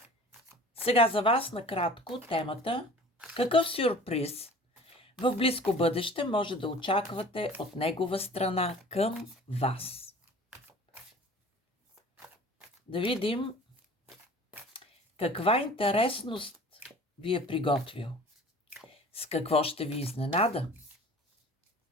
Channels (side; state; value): both; normal; correlation 0.45